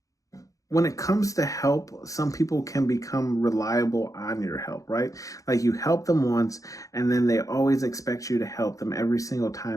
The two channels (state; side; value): late; right; 0.16 ms